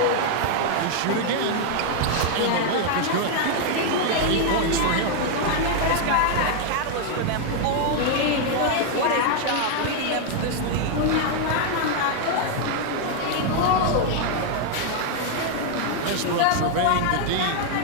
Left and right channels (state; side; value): different; both; correlation 0.00